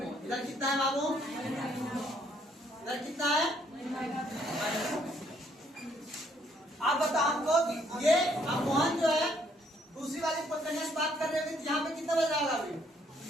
इधर कितना है बाबू? इधर कितना है? आप बताओ हमको ये अब मोहन जो है दूसरी वाली कन्या से बात कर रहे थे, यहाँ पे कितना बज रहा होगा अभी?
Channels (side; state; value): both; normal; correlation 0.68